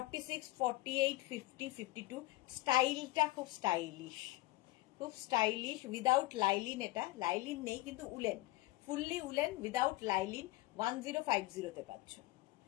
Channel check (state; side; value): quieter; right; 19.6 dB